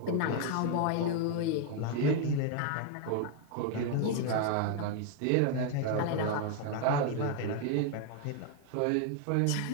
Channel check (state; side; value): different; both; correlation 0.00